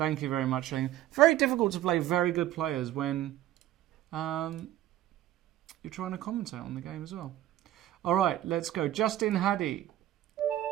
you very much. Very difficult to play very good players when you're trying to commentate on the game as well. All right, let's go. Justin Hadi.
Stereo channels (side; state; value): left; quieter; 13.5 dB